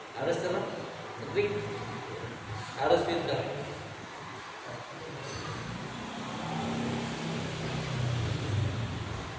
Harus tenang, sedih, harus pintar.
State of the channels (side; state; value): both; identical; correlation 1.00